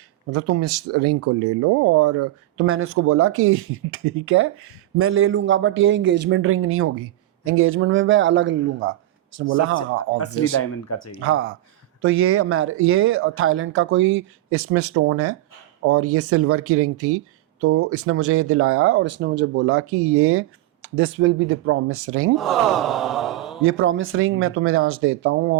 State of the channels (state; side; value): quieter; left; 15.6 dB